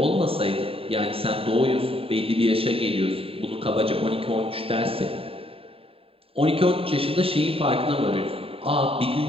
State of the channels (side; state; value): left; late; 0.27 ms